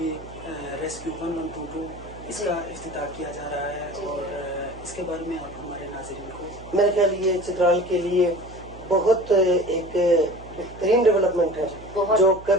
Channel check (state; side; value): noise; right; hum, 17 dB below the sound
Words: ریسکیو 1122 اس کا افتتاح کیا جا رہا ہے، اور اس کے بارے میں آپ ہمارے ناظرین کو؟ میرے خیال یہ چترال کے لیے بہت ایک بہترین ڈیولپمنٹ ہے، جو